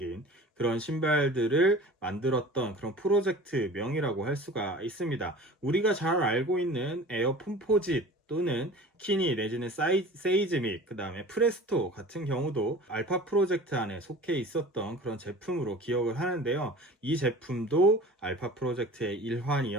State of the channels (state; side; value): normal; both; correlation 0.41